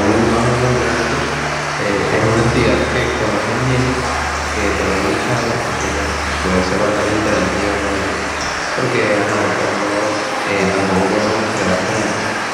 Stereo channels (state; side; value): identical; both; correlation 1.00